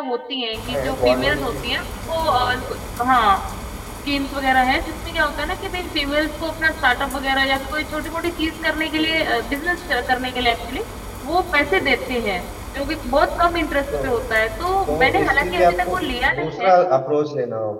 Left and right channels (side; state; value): both; identical; correlation 1.00